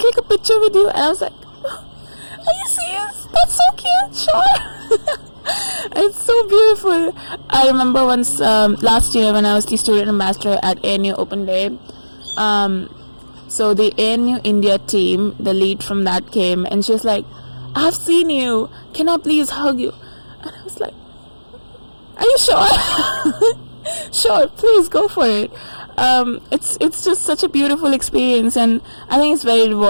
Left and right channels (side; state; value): both; inverted; correlation -1.00